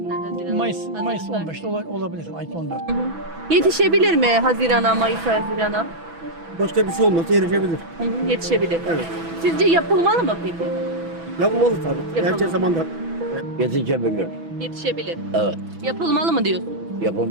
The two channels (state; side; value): late; left; 6.1 ms